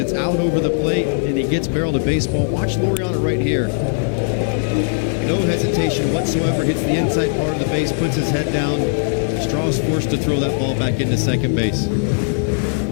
out over the plate, and he gets barreled to baseball. Watch Laureano right here. No hesitation whatsoever. Hits the inside part of the base, puts his head down. Straw's forced to throw that ball back into second base.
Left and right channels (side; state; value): right; silent; digital silence